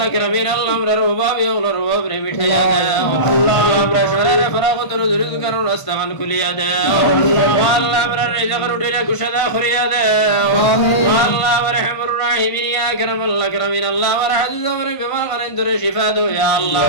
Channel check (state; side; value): late; right; 1.5 ms